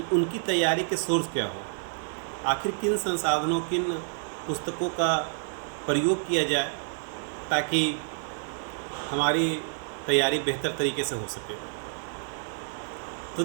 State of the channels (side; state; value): left; silent; 55 dB below the other